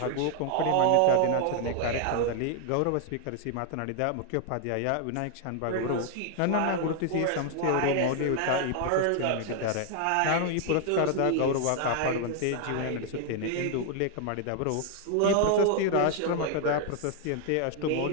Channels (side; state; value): both; different; correlation 0.00